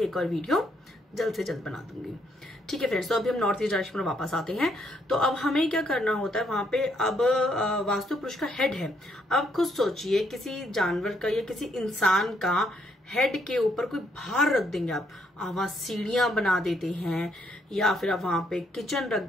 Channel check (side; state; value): both; normal; correlation 0.73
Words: और वीडियो जल्द से जल्द बना दूंगी। ठीक है फ्रेंड्स, तो अभी हम नॉर्थ ईस्ट डायरेक्शन में वापस आते हैं। तो अब हमें क्या करना होता है, वहां पे अब वास्तु पुरुष का हेड है। अब खुद सोचिए, किसी जानवर का या किसी इंसान का हेड के ऊपर कोई भार रख देंगे आप वहां सीढ़ियां बना देते हैं, या फिर आप वहां पे किचन